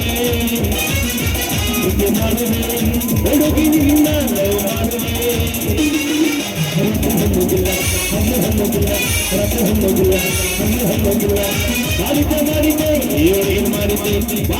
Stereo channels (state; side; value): identical; both; correlation 1.00